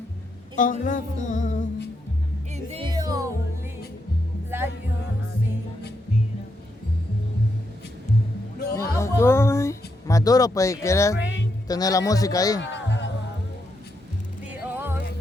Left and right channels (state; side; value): normal; both; correlation 0.81